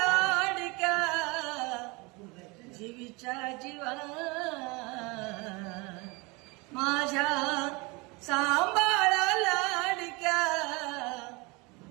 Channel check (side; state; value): left; quieter; 26.5 dB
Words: जीवीच्या जीवा माझ्या सांभाळ लाडक्या